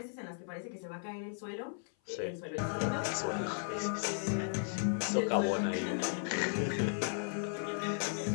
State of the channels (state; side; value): silent; right; 54 dB below the other